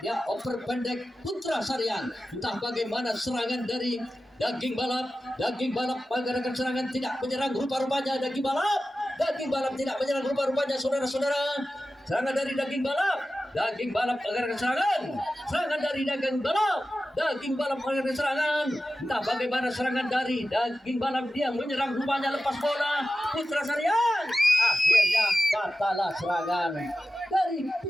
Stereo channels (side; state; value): both; normal; correlation 0.94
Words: ya oper pendek Putra Saryang, entah bagaimana serangan dari daging balap mengadakan serangan, tidak menyerang rupa-rupanya daging balap tidak menyerang rupa-rupanya, saudara-saudara. Serangan dari daging balap mengadakan serangan dari daging balap mengadakan serangan, entah bagaimana serangan dari daging balap, dia menyerang rupanya, lepas bola Putra Saryang, akhirnya patahlah serangan dari